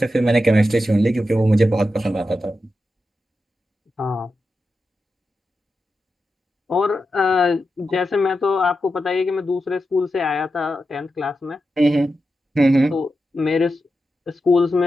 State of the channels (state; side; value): normal; both; correlation 0.89